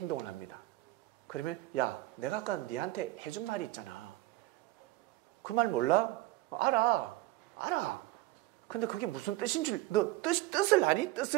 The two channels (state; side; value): quieter; left; 17.6 dB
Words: 합니다. 그러면, 야, 내가 아까 네한테 해준 말이 있잖아. 그 말 몰라? 알아. 근데 그게 무슨 뜻인 줄, 너 뜻을 아니?